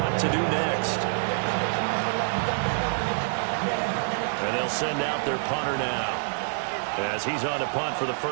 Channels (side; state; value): left; silent; 59 dB below the other